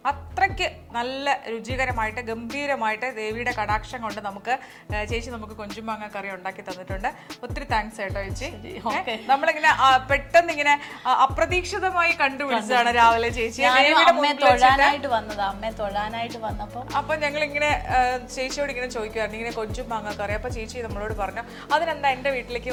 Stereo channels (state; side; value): identical; both; correlation 1.00